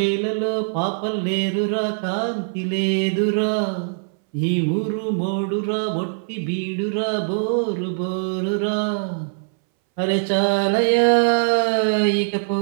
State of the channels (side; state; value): left; silent; 63 dB below the other